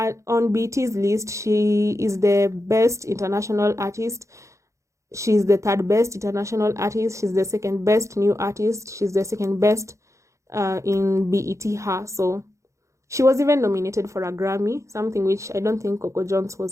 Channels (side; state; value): left; late; 0.15 ms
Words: BT's list, she is the best international artist. She's the third best international artist. She's the second best new artist. She's the second best in BET her. So she was even nominated for a Grammy, something which I don't think Coco Jones